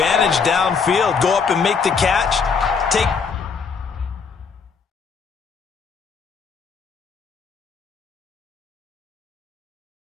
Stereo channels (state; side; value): quieter; right; 5.6 dB